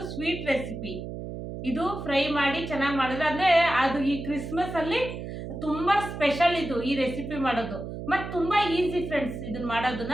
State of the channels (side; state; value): right; noise; hum, 8 dB below the sound